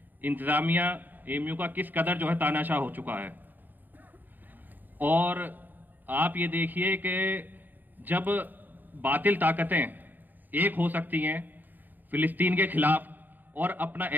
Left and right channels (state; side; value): late; left; 0.089 ms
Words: इंतज़ामिया, एएमयू का किस कदर जो है तानाशाह हो चुका है। और आप ये देखिए कि जब बातिल ताकतें एक हो सकती हैं फिलिस्तीन के खिलाफ और अपना